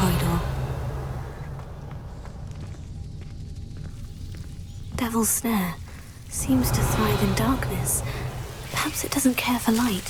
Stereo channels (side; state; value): both; identical; correlation 1.00